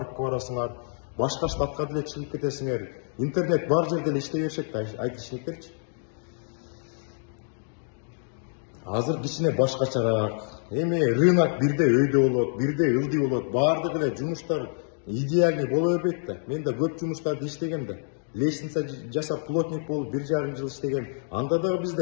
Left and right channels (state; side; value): silent; right; digital silence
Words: барасыңар, башка штатка деле чыгып кетесиңер. Интернет бар жерде эле иштей беришет да айтышчылыктерчи. Азыр кичине башкачараак. Эми рынок бирде өйдө болот, бирде ылдый болот. Баардык эле жумуштар идеальный боло бербейт да. Мен да көп жумуштарды иштегем да. Лестница жасап плотник болуп 1,5 жыл иштеген. Анда дагы